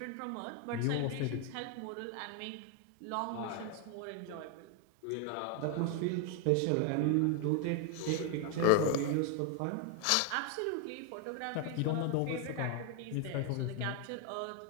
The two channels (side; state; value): both; different; correlation 0.00